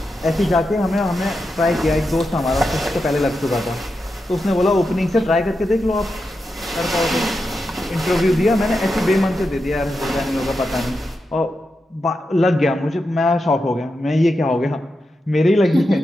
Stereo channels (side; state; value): both; normal; correlation 0.88